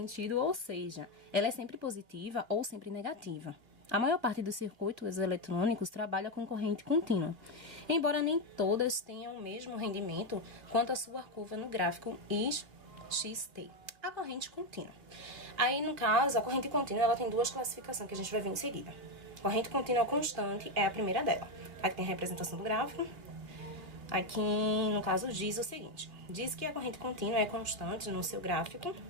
ou seja, ela é sempre positiva ou sempre negativa. A maior parte dos circuitos eletrônicos trabalha com corrente contínua, embora nem todas tenham o mesmo rendimento quanto a sua curva no gráfico XT. A corrente contínua. Aí, no caso, a corrente contínua ela tem duas classificações que a gente vai ver em seguida. Corrente contínua constante é a primeira dela. Aqui tem a representação do gráfico. Aqui, no caso, diz o seguinte. Diz que a corrente contínua é constante no seu gráfico,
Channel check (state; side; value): late; left; 2.2 ms